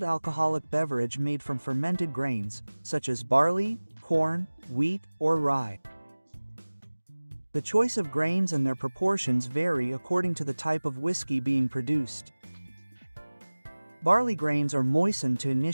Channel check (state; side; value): inverted; both; correlation -1.00